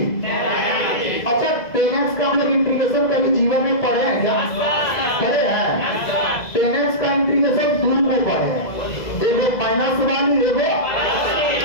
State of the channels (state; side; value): late; right; 2.0 ms